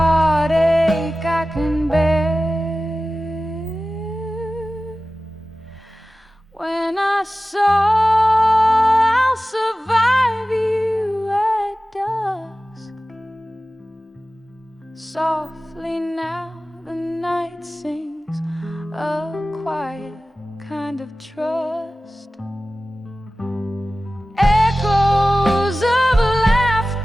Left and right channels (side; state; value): both; normal; correlation 0.96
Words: I can bear. When I saw I'll survive you at dusk, softly now the night sings a quiet kind of trust. Echoes of